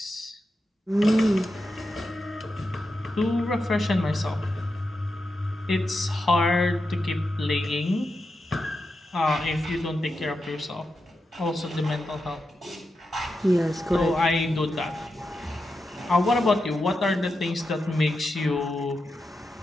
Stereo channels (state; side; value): normal; both; correlation 0.88